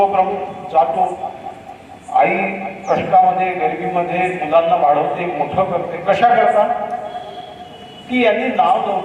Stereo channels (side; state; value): both; identical; correlation 1.00